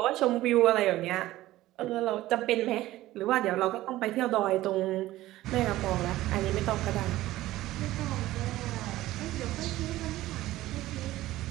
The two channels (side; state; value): left; quieter; 16.0 dB